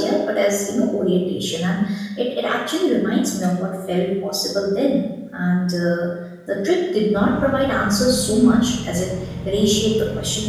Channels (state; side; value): identical; both; correlation 1.00